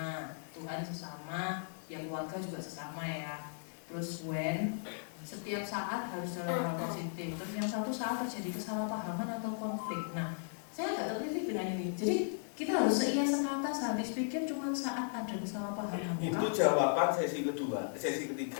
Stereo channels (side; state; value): right; silent; digital silence